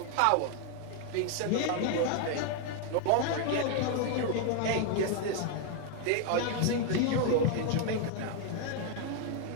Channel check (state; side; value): different; both; correlation 0.00